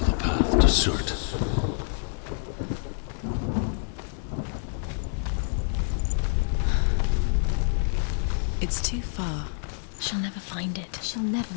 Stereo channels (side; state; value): right; silent; digital silence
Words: path to Surtr. It's too far. She'll never find it. She'll never